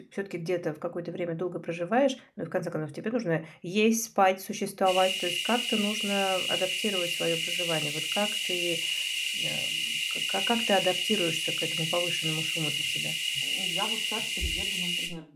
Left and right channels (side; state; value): both; identical; correlation 1.00